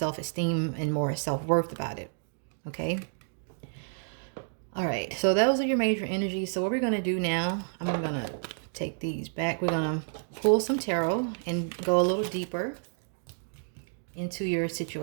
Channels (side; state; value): left; silent; 58 dB below the other